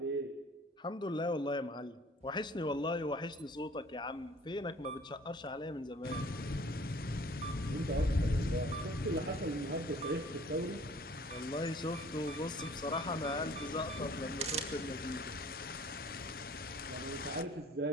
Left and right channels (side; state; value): both; normal; correlation 0.52